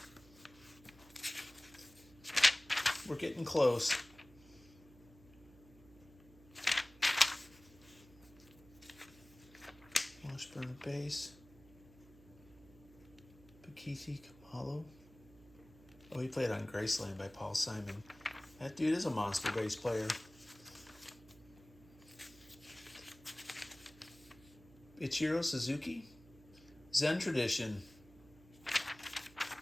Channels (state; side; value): noise; right; hum, 23 dB below the sound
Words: We're getting close. Washburn bass. Pakiti Kamalo. Oh, he played on Graceland by Paul Simon. That dude is a monster bass player. Ichiro Suzuki. Zen Tradition.